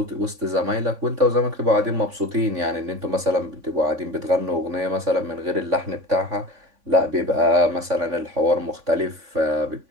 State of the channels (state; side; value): late; left; 3.5 ms